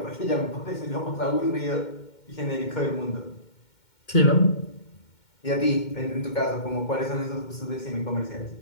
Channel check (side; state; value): right; late; 2.2 ms